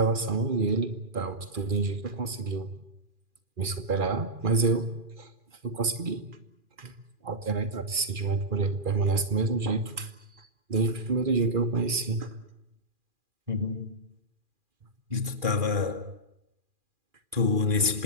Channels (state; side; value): late; left; 2.4 ms